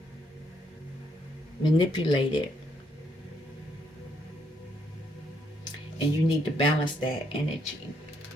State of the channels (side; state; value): both; normal; correlation 0.73